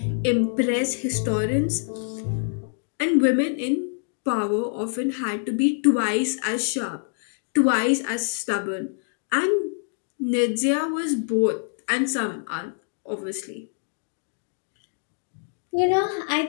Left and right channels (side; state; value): right; silent; digital silence